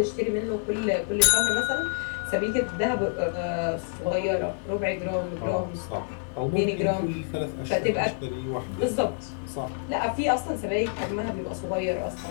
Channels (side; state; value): right; silent; digital silence